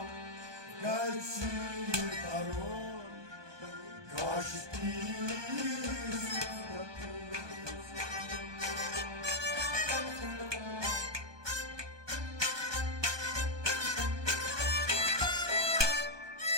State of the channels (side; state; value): left; late; 1.2 ms